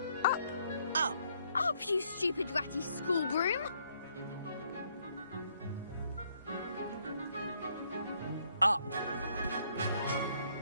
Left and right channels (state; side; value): inverted; both; correlation -0.70